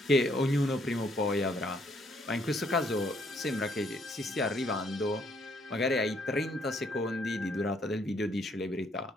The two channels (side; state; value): both; normal; correlation 0.68